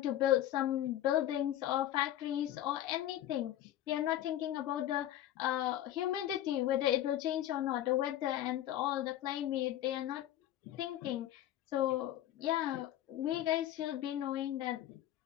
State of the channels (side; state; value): right; quieter; 12.6 dB